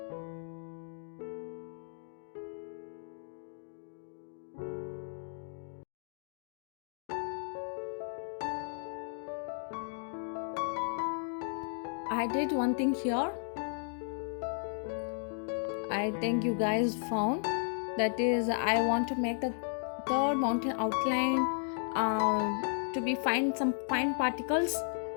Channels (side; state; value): right; silent; 55 dB below the other